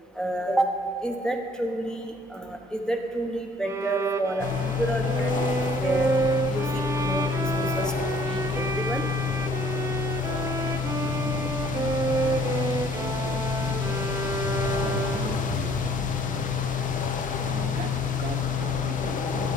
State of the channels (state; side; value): normal; both; correlation 0.58